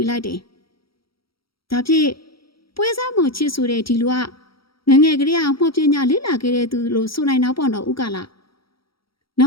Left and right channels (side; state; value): right; late; 0.75 ms